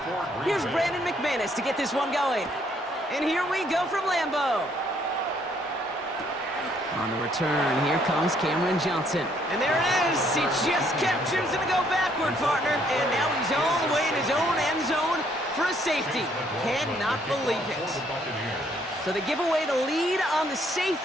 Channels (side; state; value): both; normal; correlation 0.67